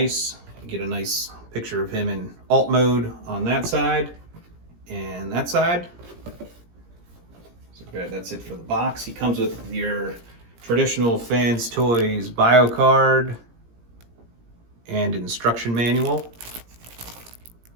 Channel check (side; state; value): left; late; 17 ms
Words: You get a nice picture of him in alt mode on that side and that side. So that's it for the box. He comes with your traditional Fans Toys bio card and instruction manual.